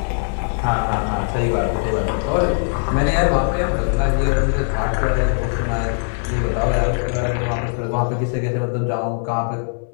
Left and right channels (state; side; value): silent; right; 62 dB below the other